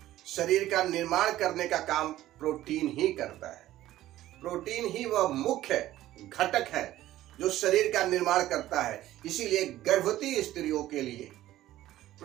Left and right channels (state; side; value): quieter; left; 14.4 dB